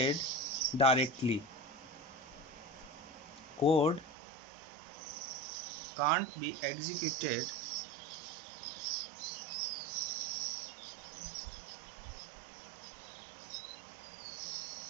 directly. Code can't be executed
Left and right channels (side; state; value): left; drops out; at 4.1 s